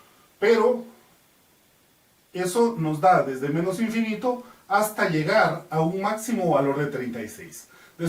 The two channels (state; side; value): identical; both; correlation 1.00